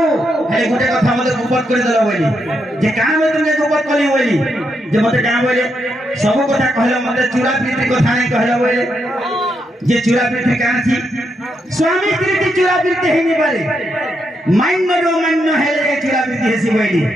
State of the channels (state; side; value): normal; both; correlation 0.81